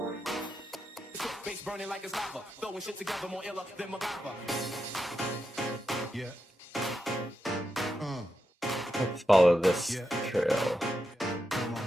Burning like it's lava, throwing shit together more iller than MacGyver. Let's follow this trail.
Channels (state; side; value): normal; both; correlation 0.87